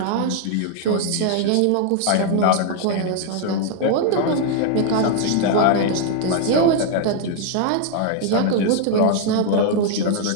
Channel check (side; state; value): both; different; correlation 0.00